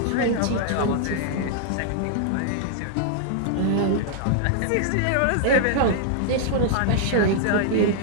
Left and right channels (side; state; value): both; different; correlation -0.01